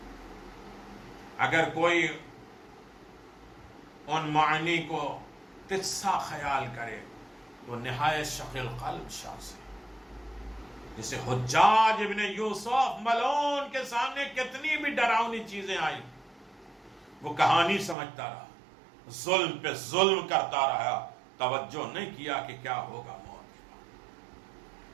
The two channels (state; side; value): drops out; left; at 17.9 s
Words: اگر کوئی ان معنی کو تجسا خیال کرے تو نہایت شقی القلب شخص ہے. جسے حجاج ابن یوسف ملعون کے سامنے کتنی بھی ڈراؤنی چیزیں آئی, وہ کہانی سمجھتا رہا, ظلم پہ ظلم کرتا رہا, توجہ نہیں کیا کہ کیا ہوگا موت کے